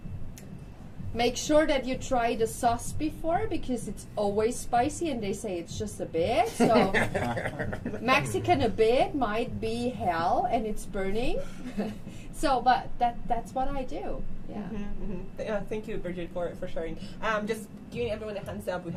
Make sure that you try the sauce before because it's always spicy and they say it's just a bit. So Mexican a bit might be hell and it's burning. So, but that's what I do. Yeah. Thank you, Bridget, for sharing. Just giving everyone a hands up. We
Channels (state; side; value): identical; both; correlation 1.00